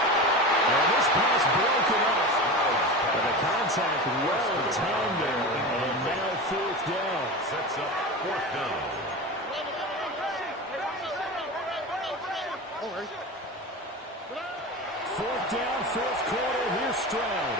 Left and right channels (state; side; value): normal; both; correlation 0.27